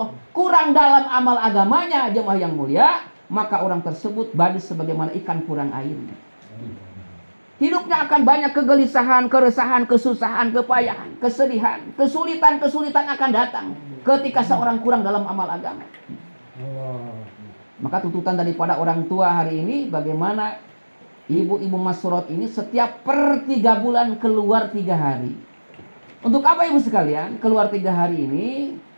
kurang dalam amal agamanya, jemaah yang mulia, maka orang tersebut badis sebagaimana ikan kurang airnya. Hidupnya akan banyak kegelisahan, keresahan, kesusahan, kepayahan, kesedihan, kesulitan akan datang ketika seorang kurang dalam amal agama. Maka tuntutan daripada orang tua hari ini, bagaimana ibu-ibu Masrot ini setiap per 3 bulan keluar 3 hari. Untuk apa ibu sekalian? Keluar 3 hari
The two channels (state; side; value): inverted; both; correlation -1.00